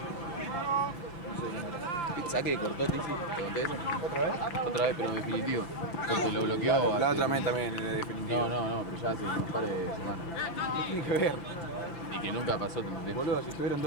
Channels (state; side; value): late; right; 5.8 ms